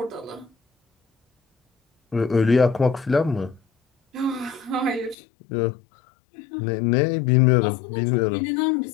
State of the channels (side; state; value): right; drops out; at 5.2 s